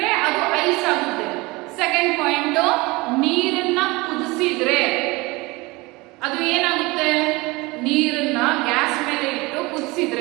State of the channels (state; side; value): quieter; left; 23.3 dB